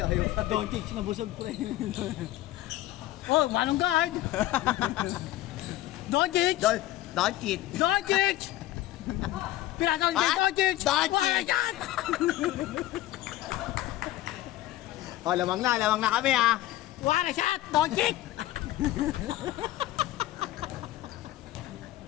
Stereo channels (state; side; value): quieter; right; 15.3 dB